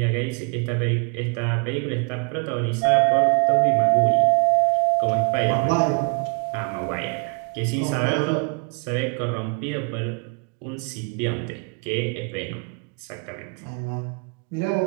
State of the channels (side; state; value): left; quieter; 34.5 dB